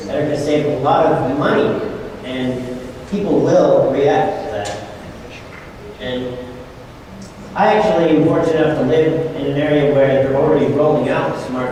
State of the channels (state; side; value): identical; both; correlation 1.00